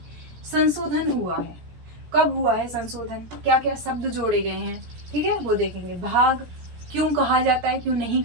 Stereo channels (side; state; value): left; late; 17 ms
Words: संशोधन हुआ है, कब हुआ है संशोधन, क्या क्या शब्द जोड़े गए हैं, ठीक है, वो देखेंगे। भाग क्यों कहा जाता है, क्यों नहीं